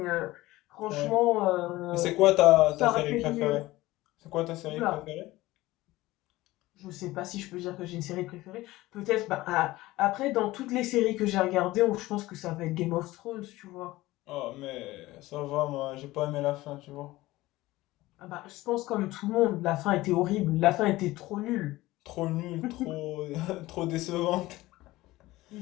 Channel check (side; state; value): right; quieter; 18.2 dB